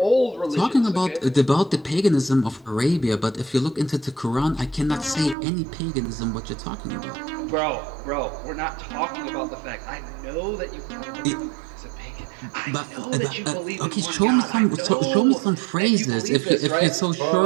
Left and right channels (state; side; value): drops out; left; at 5.4 s